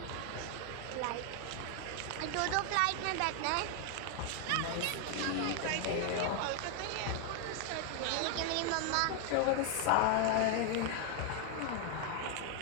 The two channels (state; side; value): different; both; correlation 0.00